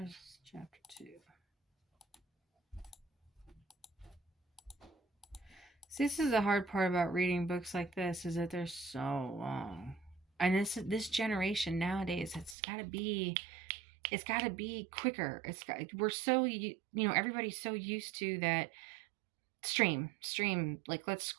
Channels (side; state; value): left; drops out; at 12.6 s